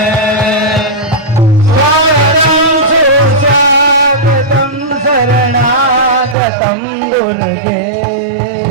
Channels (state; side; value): drops out; left; at 6.4 s